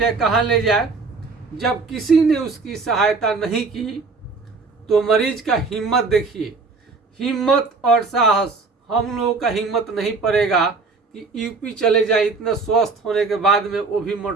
कहाँ ले जाए। जब किसी ने उसकी सहायता नहीं की तो मरीज का हिम्मत देखिए, हिम्मत और साहस। हम लोगों का हिम्मत नहीं पड़ेगा कि यूपी चले जाए इतना स्वस्थ होने के बाद में, वो भी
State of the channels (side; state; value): left; quieter; 4.2 dB